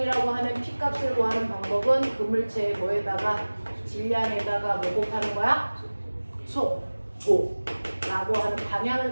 하는 P값을 구하는 방법은 그물체의 뭐에다가 질량에다가 뭐 곱하는 거야? 속도 라고 하는 방향을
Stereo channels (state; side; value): inverted; both; correlation -1.00